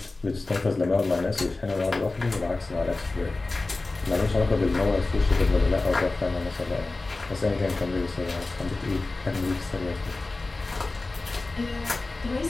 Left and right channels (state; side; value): quieter; right; 3.3 dB